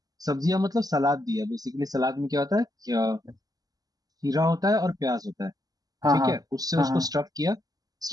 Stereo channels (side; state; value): left; late; 0.18 ms